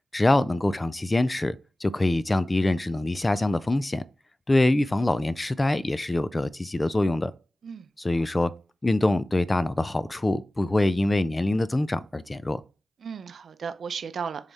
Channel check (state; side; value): normal; both; correlation 0.97